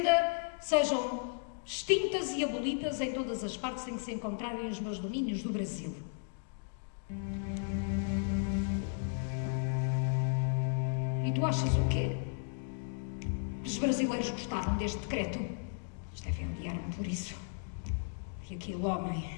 sejam extintas e abolidas em todas as partes em que se encontrarem os meus domínios do Brasil. E tu achas o quê? Os brasileiros gostaram deste decreto? Eles devem odiar-me por isso. E aquele homem,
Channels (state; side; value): silent; right; digital silence